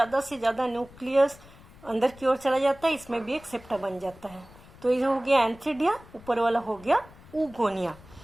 से ज्यादा न्यूक्लियस अंदर की ओर चला जाता है, इसमें भी एक सेप्टा बन जाता है। तो ये हो गया एंथ्रीडिया, ऊपर वाला हो गया ऊगोनिया।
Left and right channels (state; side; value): noise; left; rumble, 22 dB below the sound